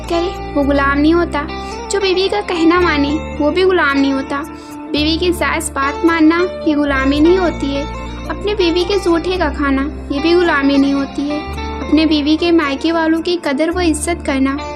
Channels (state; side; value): identical; both; correlation 1.00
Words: کرے وہ غلام نہیں ہوتا، جو بیوی کا کہنا مانے وہ بھی غلام نہیں ہوتا۔ بیوی کی جائز بات ماننا یہ غلامی نہیں ہوتی ہے۔ اپنے بیوی کے جھوٹے کا کھانا یہ بھی غلامی نہیں ہوتی ہے۔ اپنے بیوی کے مائکے والوں کی قدر و عزت کرنا